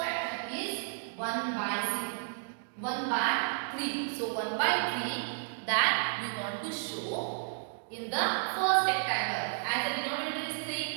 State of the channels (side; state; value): left; silent; digital silence